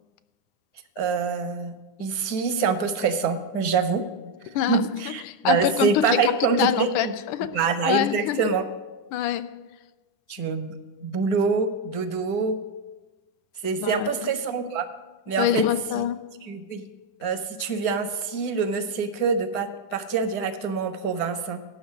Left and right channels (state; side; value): late; right; 9.9 ms